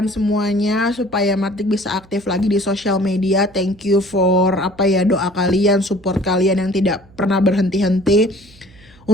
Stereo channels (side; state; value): right; noise; hum, 26 dB below the sound